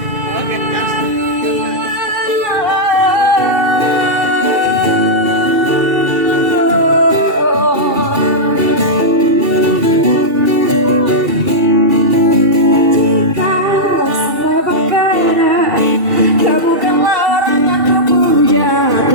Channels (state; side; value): late; left; 2.3 ms